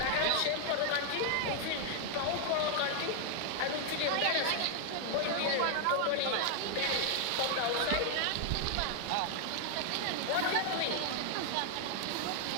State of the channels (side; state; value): both; different; correlation 0.00